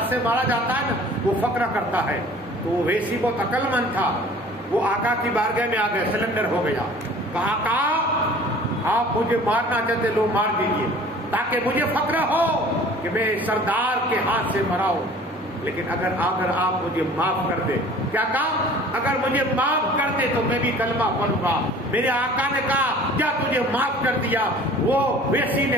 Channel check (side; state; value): both; normal; correlation 0.47